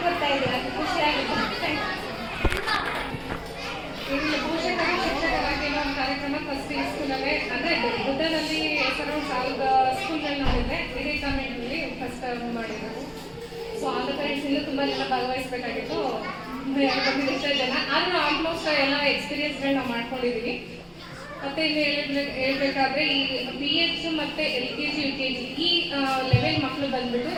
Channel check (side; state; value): both; identical; correlation 1.00